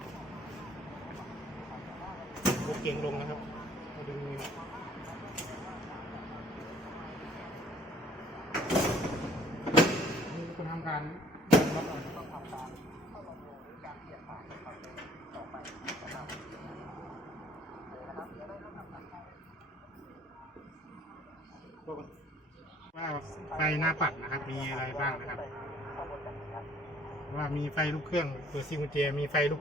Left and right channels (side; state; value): both; normal; correlation 0.57